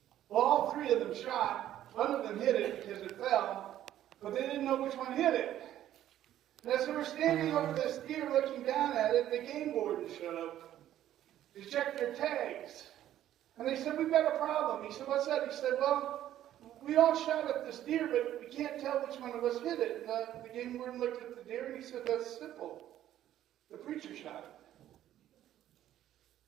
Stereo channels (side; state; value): left; quieter; 12.2 dB